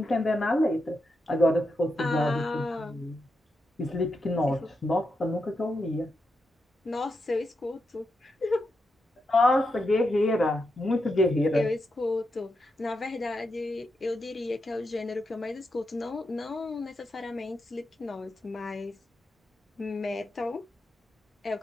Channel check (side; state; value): both; normal; correlation 0.86